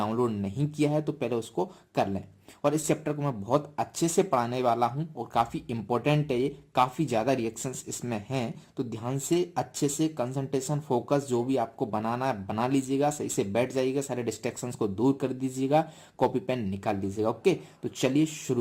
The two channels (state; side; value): identical; both; correlation 1.00